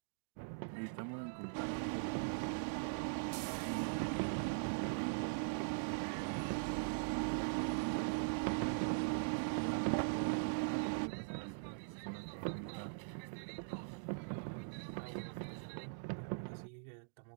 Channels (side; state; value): left; silent; digital silence